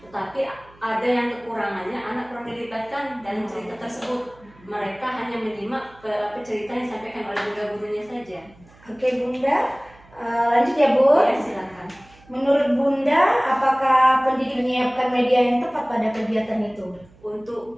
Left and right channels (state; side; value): noise; right; hum, 27 dB below the sound